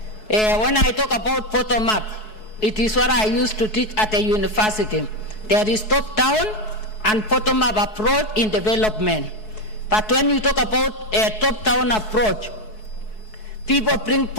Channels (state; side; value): late; right; 4.7 ms